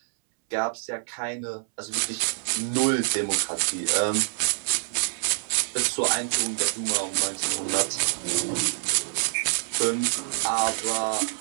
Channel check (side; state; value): left; silent; 61 dB below the other